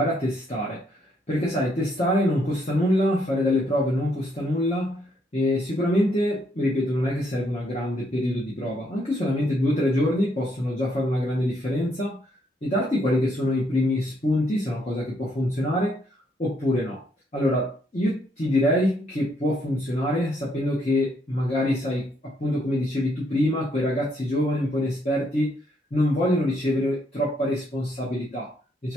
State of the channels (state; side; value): normal; both; correlation 0.72